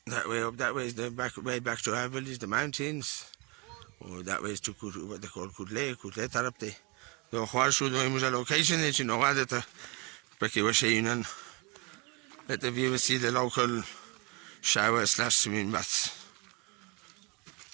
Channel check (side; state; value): left; quieter; 29.2 dB